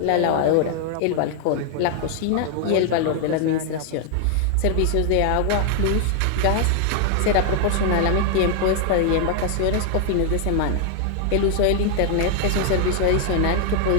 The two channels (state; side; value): different; both; correlation 0.00